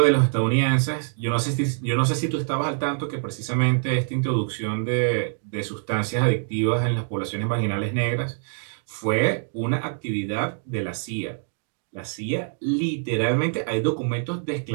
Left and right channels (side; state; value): left; silent; digital silence